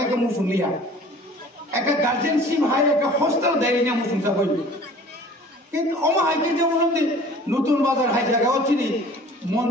মুসলিয়া একটা গার্জেনশিপ হাই একটা হোস্টেল দেয়নি মুসলিম হই কিন্তু অমাহাইকে যে বলতে নতুন বাজার হাই জায়গা চিনি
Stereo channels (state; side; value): normal; both; correlation 0.48